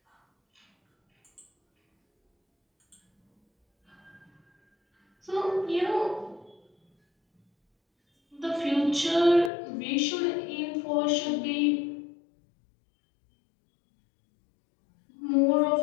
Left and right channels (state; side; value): drops out; right; at 9.5 s